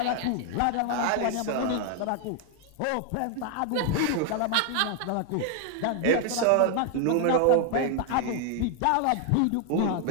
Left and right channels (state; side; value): different; both; correlation 0.00